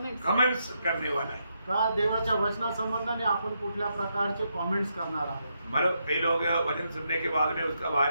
कमेंट्स करने वाला है। का देवाच्या वचना संबंधाने आपण कुठल्या प्रकारचे कमेंट्स करणार आहोत। मतलब कई लोग वचन सुनने के बाद में उसका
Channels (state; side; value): inverted; both; correlation -0.80